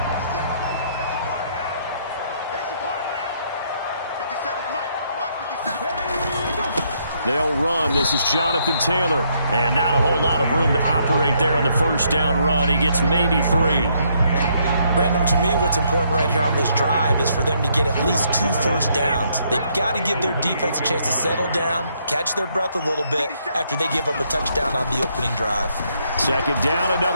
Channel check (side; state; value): both; inverted; correlation -0.72